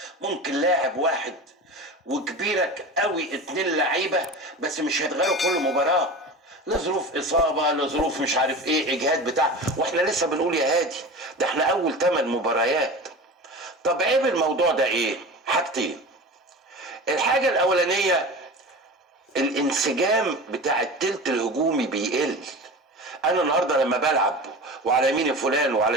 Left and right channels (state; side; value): normal; both; correlation 0.32